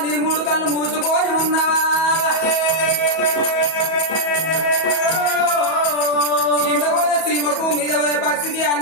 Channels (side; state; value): right; late; 37 ms